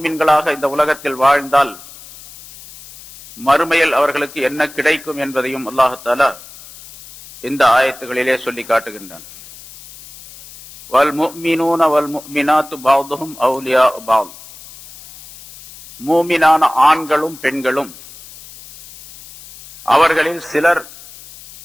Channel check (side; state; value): left; noise; hiss, 19 dB below the sound